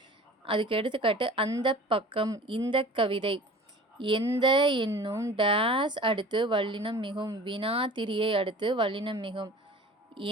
அதுக்கு எடுத்துக்காட்டு அந்த பக்கம், இந்த கவிதை. எந்த என்னும் டேஸ் அடுத்து வல்லினம் மிகும். வினா திரியை அடுத்து வல்லினம் மிகும்.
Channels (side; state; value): both; normal; correlation 0.42